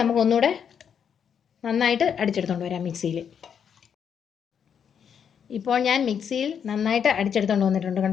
നമുക്ക് ഒന്നുകൂടെ നന്നായിട്ട് അടിച്ചെടുത്തുകൊണ്ട് വരാം മിക്സിയിൽ. ഇപ്പോൾ ഞാൻ മിക്സിയിൽ നന്നായിട്ട് അടിച്ചെടുത്തുകൊണ്ട് വന്നിട്ടുണ്ട്,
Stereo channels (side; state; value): right; quieter; 7.7 dB